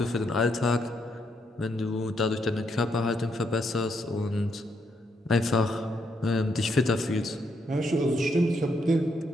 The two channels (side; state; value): both; normal; correlation 0.76